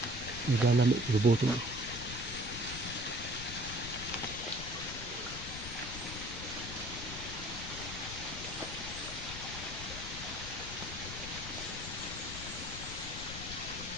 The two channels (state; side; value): noise; left; rumble, 9 dB below the sound